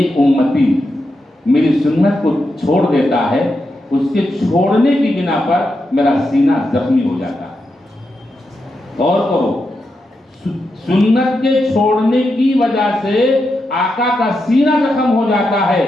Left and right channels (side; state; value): both; normal; correlation 0.86